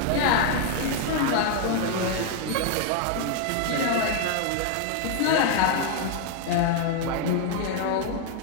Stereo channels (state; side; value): different; both; correlation 0.00